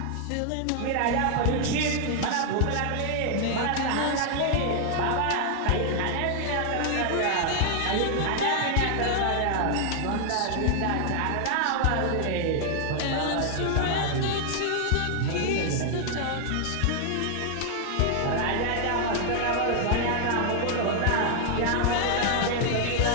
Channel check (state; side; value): different; both; correlation 0.00